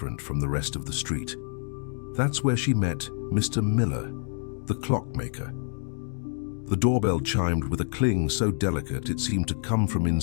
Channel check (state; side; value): silent; right; digital silence